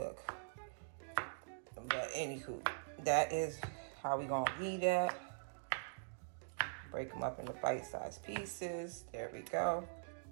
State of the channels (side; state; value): left; silent; digital silence